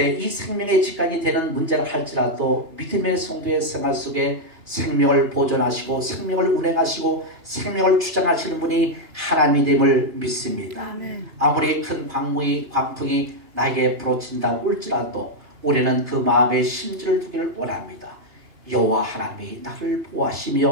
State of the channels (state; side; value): late; left; 2.9 ms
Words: 이 생명의 직관이 되는 문제를 할지라도 믿음의 성도의 생활 속에 생명을 보존하시고 생명을 운행하시고 생명을 주장하시는 분이 하나님임을 믿습니다. 아무리 큰 광풍이 나에게 부러친다고 할지라도 우리는 그 마음의 심지를 두기를 원합니다. 여호와 하나님이 나를